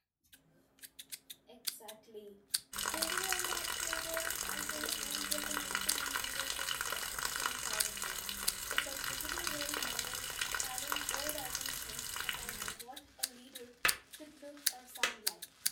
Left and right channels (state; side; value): identical; both; correlation 1.00